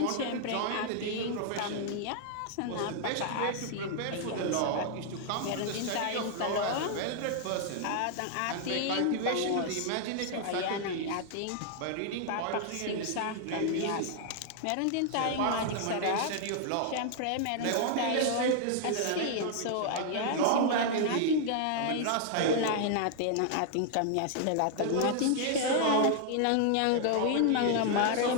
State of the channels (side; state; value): both; different; correlation 0.00